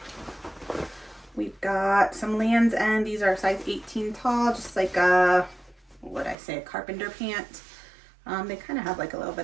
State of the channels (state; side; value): drops out; left; at 6.4 s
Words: We've got some Lands' End. These are size 18 tall, just like a, what would I say, a carpenter pant. They kind of have like a little